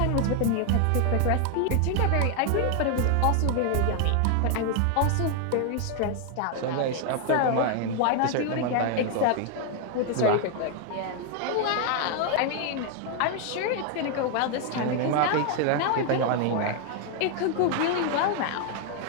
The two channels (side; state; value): both; different; correlation 0.00